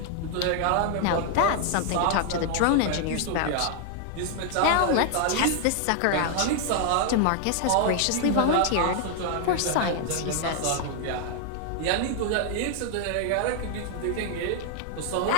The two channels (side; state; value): both; different; correlation 0.00